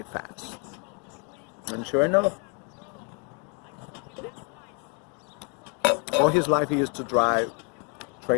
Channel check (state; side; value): quieter; right; 37.5 dB